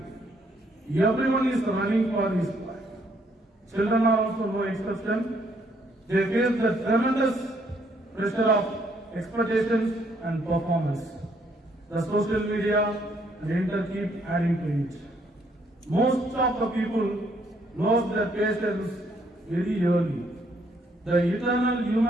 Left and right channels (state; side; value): normal; both; correlation 0.69